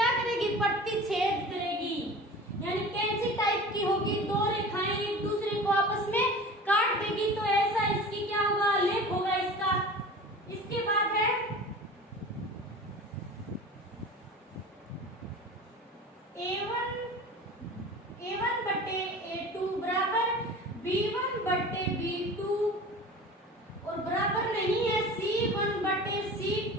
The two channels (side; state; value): both; normal; correlation 0.37